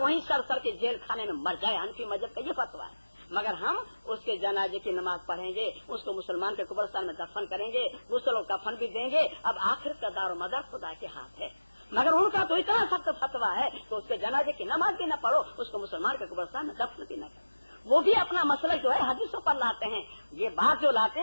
सर के जेल खाने में मर जाए। हनफी मजहब का ये फतवा है। मगर हम उसके जनाजे की नमाज पढ़ेंगे, उसको मुसलमान के कब्रिस्तान में दफन करेंगे, गुस्ल और कफन भी देंगे। अब आखिर का दारो मदार खुदा के हाथ है। मगर उनका तो इतना सख्त फतवा है कि उसके जनाजे की नमाज भी न पढ़ो, उसको मुसलमान के कब्रिस्तान में दफन भी न करो। वो भी अपना मसला जो है हदीसों पर लाते हैं। ये बात जो लाते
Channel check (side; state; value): both; inverted; correlation -1.00